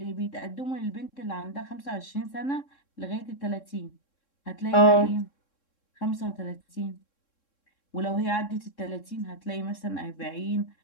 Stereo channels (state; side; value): late; right; 3.7 ms